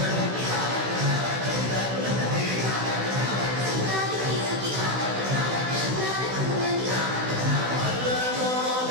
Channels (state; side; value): late; left; 16 ms